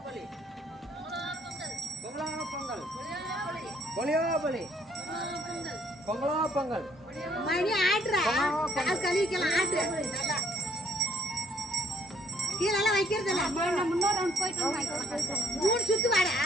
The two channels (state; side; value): normal; both; correlation 0.64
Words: பொலியோ பொலி பொங்கலோ பொங்கல் மணி ஆட்டுறா கால் கழுவிக்கலாம் ஆட்டு நல்லா கீழெல்லாம் வைக்கிறது இல்லை முன்னோர் ரவுண்ட் போயிட்டு 3 சுத்து வாடா